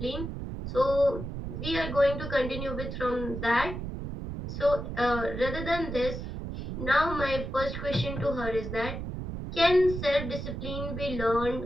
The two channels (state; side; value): noise; right; rumble, 6 dB below the sound